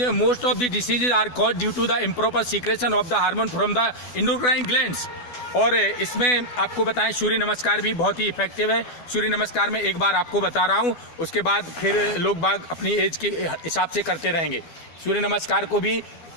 most of the diseases are caused due to the improper secretion of the hormone from the endocrine glands. और इसमें आपको बताएं सूर्य नमस्कार भी बहुत ही इफेक्टिव है। सूर्य नमस्कार में एक बार आपको बता रहा हूं, उसके बाद फिर लोग बाग अपनी एज के हिसाब से करते रहेंगे। सूर्य नमस्कार को भी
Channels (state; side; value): late; right; 12 ms